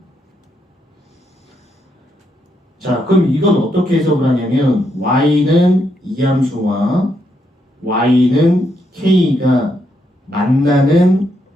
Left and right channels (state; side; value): normal; both; correlation 0.78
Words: 자, 그럼 이건 어떻게 해석을 하냐면 y는 이 함수와 y는 k가 만나는